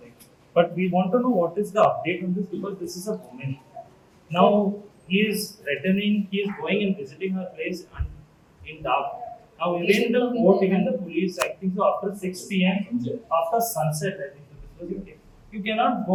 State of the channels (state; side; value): identical; both; correlation 1.00